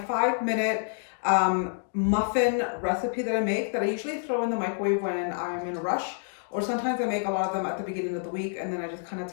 muffin recipe that I make that I usually throw in the microwave when I'm in a rush. Or sometimes I make a lot of them at the beginning of the week and then I just kind of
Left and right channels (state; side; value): silent; right; digital silence